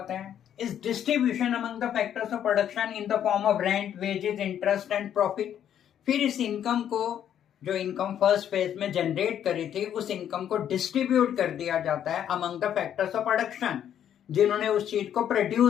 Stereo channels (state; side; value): quieter; right; 9.8 dB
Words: है, इस distribution among the factors of production in the form of rent, wages, interest and profit. फिर इस इनकम को, जो इनकम फर्स्ट फेज में जनरेट करी थी, उस इनकम को डिस्ट्रीब्यूट कर दिया जाता है among the factors of production, जिन्होंने उस चीज को